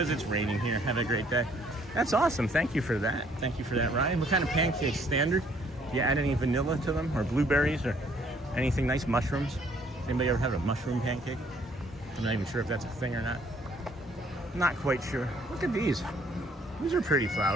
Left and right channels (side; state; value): both; normal; correlation 0.63